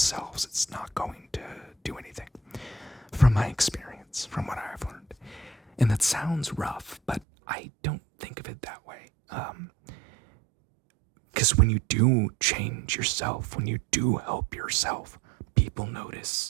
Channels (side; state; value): left; drops out; at 7.2 s